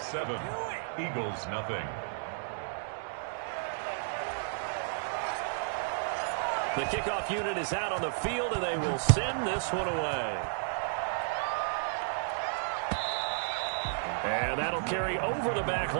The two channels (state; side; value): silent; left; digital silence